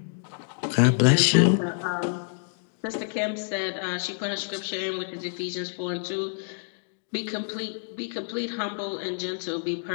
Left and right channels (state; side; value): silent; right; digital silence